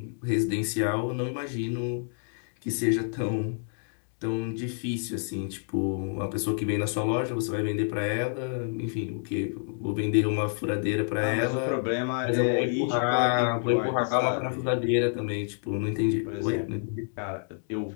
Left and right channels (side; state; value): right; silent; digital silence